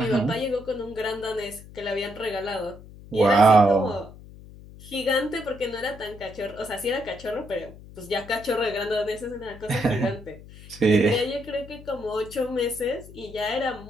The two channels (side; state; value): left; noise; hum, 18 dB below the sound